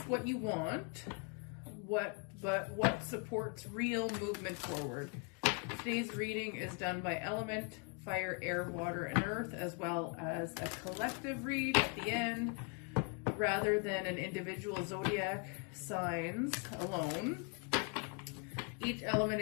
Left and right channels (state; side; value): quieter; right; 35.3 dB